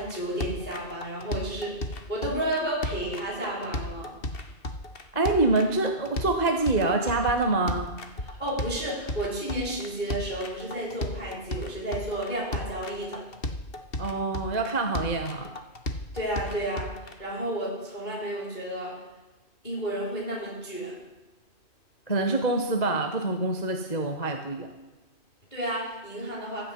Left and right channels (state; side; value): late; right; 2.5 ms